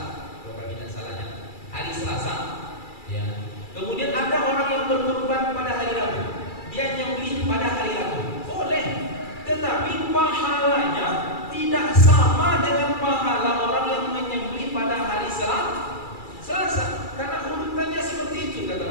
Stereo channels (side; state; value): right; late; 2.3 ms